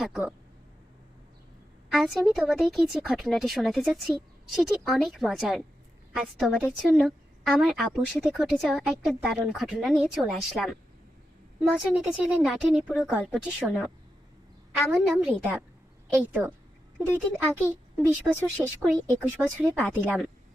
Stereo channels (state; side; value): normal; both; correlation 0.88